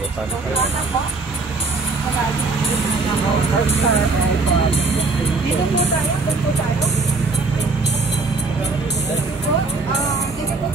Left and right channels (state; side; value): quieter; left; 3.8 dB